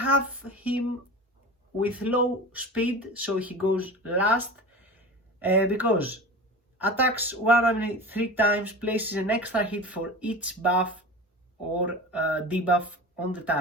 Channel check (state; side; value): normal; both; correlation 0.33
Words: him with low speed, so he goes last, because attacks 103 times, places an extra hit for each buff or debuff on the